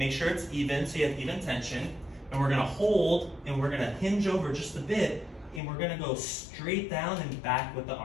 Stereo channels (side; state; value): right; drops out; at 5.6 s